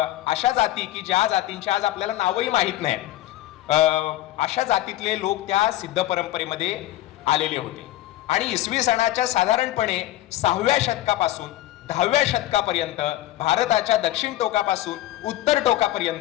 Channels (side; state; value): right; quieter; 15.1 dB